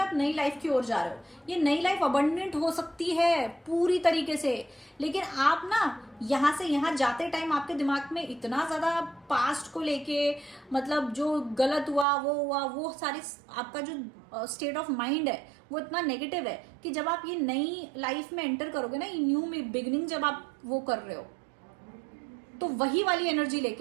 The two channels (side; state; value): left; drops out; at 12.1 s